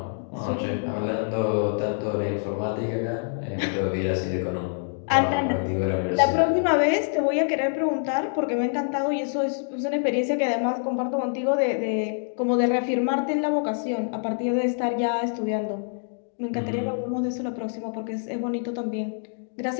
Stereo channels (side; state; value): right; silent; digital silence